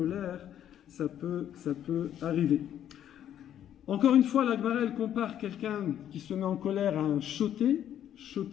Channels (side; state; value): right; quieter; 10.5 dB